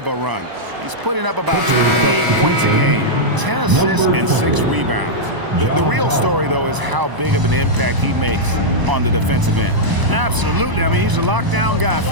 a run. He's putting up about 28 points a game, 10 assists, and 6 rebounds. The real story, though, is how big of an impact he makes on the defensive end. Absolutely. I mean, he's a lockdown guy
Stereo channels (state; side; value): late; left; 1.0 ms